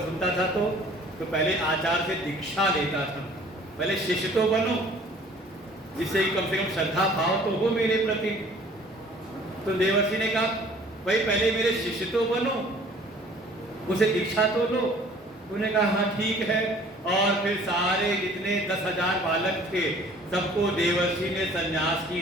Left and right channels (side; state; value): both; normal; correlation 0.52